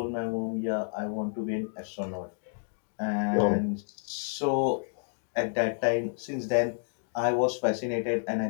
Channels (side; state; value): right; silent; 58 dB below the other